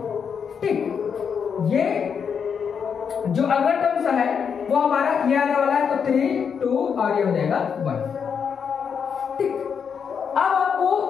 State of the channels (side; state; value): right; quieter; 6.8 dB